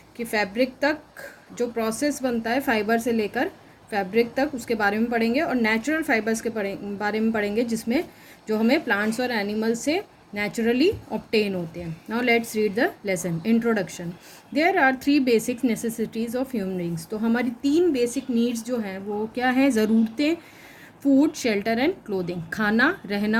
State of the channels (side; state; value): both; identical; correlation 1.00